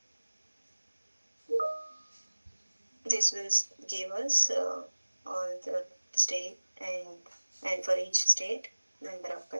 This will give us all the state and for each state number of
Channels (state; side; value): inverted; both; correlation -1.00